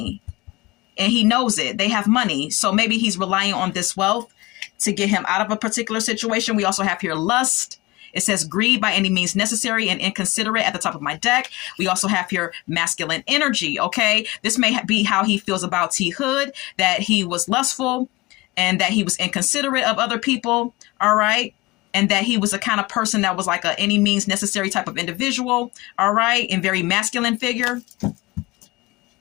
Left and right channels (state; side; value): quieter; right; 21.7 dB